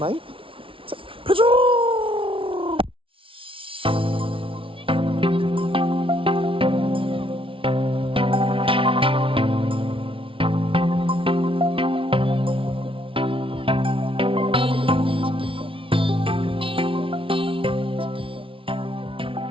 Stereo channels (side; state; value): left; late; 0.25 ms